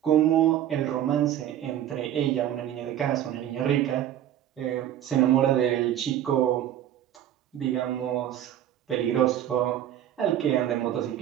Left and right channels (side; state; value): left; quieter; 11.4 dB